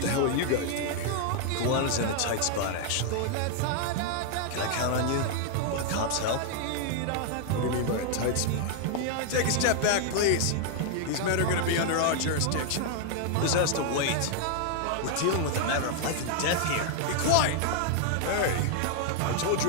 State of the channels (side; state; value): both; different; correlation 0.00